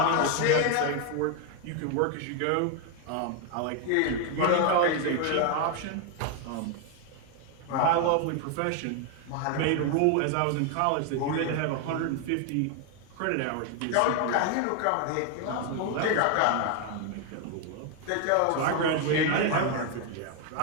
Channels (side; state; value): both; different; correlation 0.01